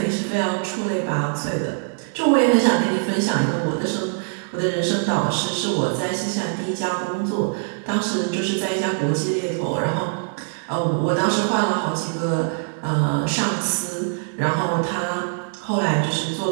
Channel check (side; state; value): left; silent; digital silence